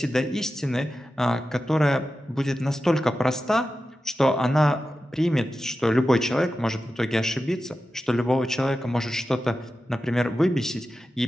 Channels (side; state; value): both; normal; correlation 0.92